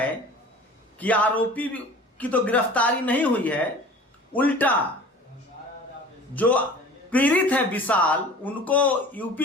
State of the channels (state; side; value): normal; both; correlation 0.43